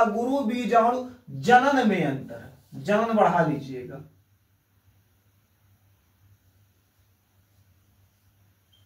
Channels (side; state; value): both; identical; correlation 1.00